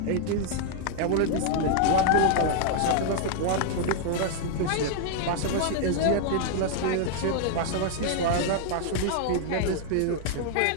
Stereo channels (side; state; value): both; different; correlation -0.01